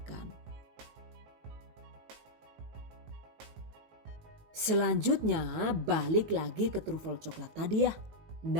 Selanjutnya balik lagi ke trufel coklat tadi ya.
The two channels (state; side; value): late; left; 19 ms